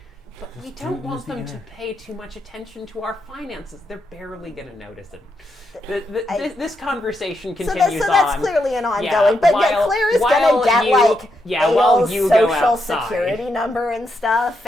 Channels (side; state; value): both; normal; correlation 0.82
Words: but we Just don't use want the them to internet. pay too much attention to our finances. They're barely going to notice it. This conversation So continues that's on. clearly an ongoing. Yeah, but while- Claire is while gonna get you- like yeah, while Ail's you go social outside. security number and stuff,